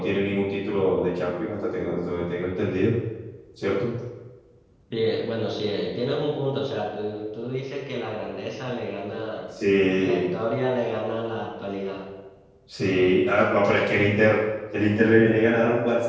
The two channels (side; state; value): both; identical; correlation 1.00